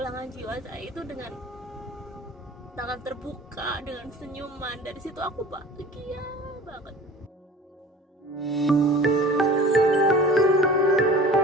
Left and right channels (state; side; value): normal; both; correlation 0.41